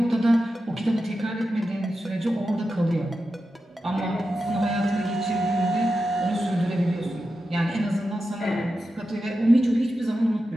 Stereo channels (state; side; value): normal; both; correlation 0.90